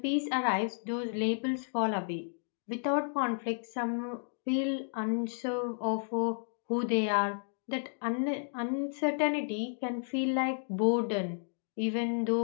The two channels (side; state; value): right; silent; digital silence